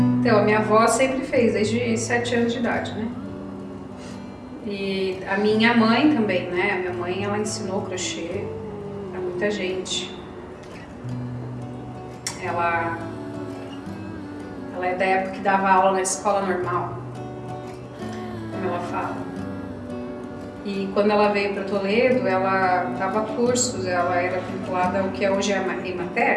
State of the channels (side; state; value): both; identical; correlation 1.00